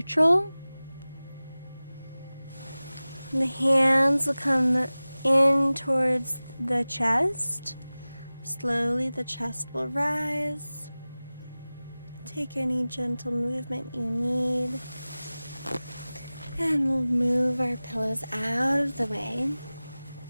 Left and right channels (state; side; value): inverted; both; correlation -0.98